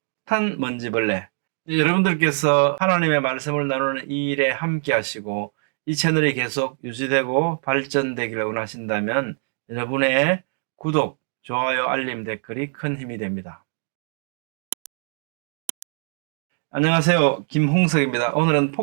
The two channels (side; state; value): left; silent; digital silence